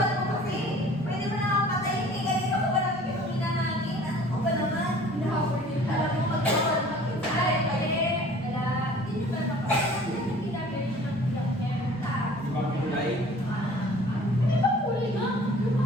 mo kasi. Pwede mo na ako patayin. Eh, ganito ko ba naman yung hinahangin? Ano ko ba naman? Hinahabol din. Alam mo, magkakawal ng kinsay. Kaya, wala. Hindi ba napapagod? Hindi na very sure ng Di ba kulay? Di ba kulay nga? Yung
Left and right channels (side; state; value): both; normal; correlation 0.49